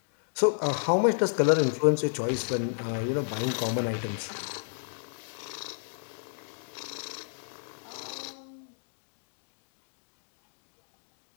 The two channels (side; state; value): right; silent; digital silence